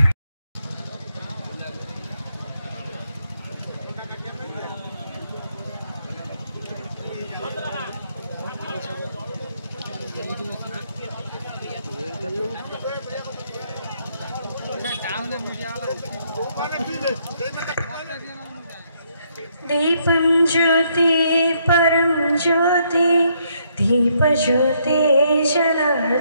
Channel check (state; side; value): inverted; both; correlation -0.72